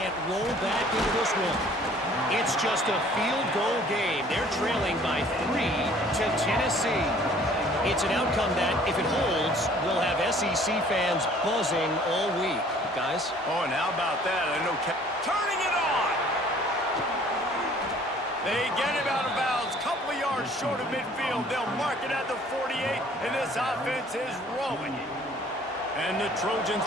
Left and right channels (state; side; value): normal; both; correlation 0.55